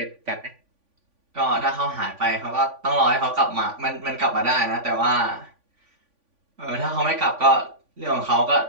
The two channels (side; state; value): left; late; 3.5 ms